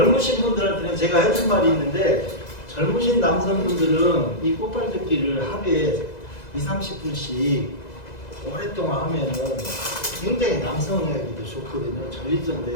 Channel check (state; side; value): late; right; 2.0 ms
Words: 분들한테는 제가 해준 말이 있는데 젊으신 남성분들은 이 꽃발 딛기를 하루에 20-30분씩 오랫동안 하면은 굉장히 남성에게도 좋거든요. 전립선